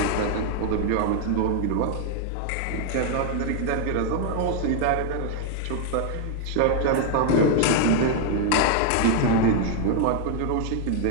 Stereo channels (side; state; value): both; different; correlation 0.00